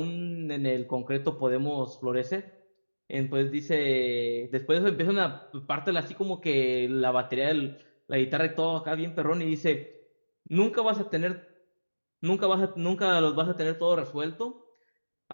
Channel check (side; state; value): both; inverted; correlation -1.00